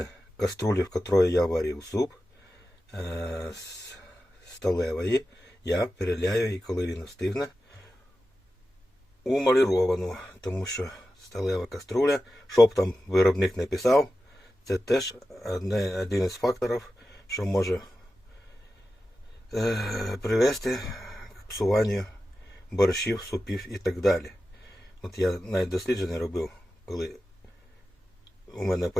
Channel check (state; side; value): normal; both; correlation 0.93